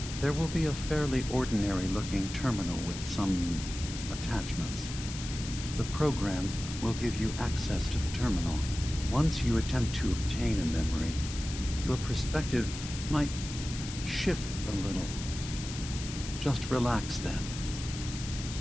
There will be a fairly ordinary-looking terminal with some attachments. The program will give you access to the terminal. Once you attempt to obtain a memory, your perspective might shift a little. Just relax then.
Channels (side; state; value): left; noise; hiss, 10 dB below the sound